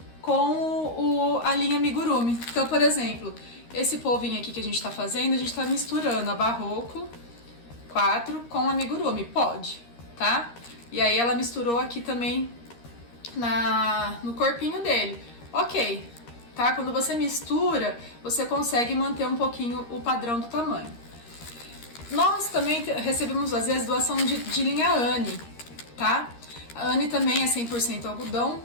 com a linha amigurumi. Então, por exemplo, esse polvinho aqui que a gente tá fazendo, a gente tá misturando a Barroco 4 com a amigurumi. Pode, tá? E aí ela misturou aqui também no corpinho dele. Ok, tá? Quando você mistura, você consegue manter um pouquinho o padrão do tamanho. Nós também recebemos, às vezes, doação de linha Anne, tá? A Anne também é 100% algodão,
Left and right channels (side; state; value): right; late; 13 ms